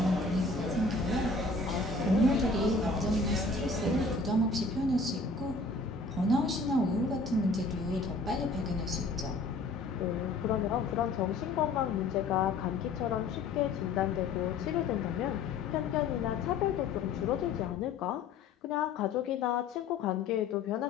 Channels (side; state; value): right; quieter; 3.8 dB